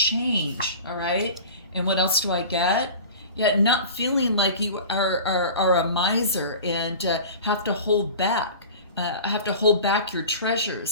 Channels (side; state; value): both; inverted; correlation -0.37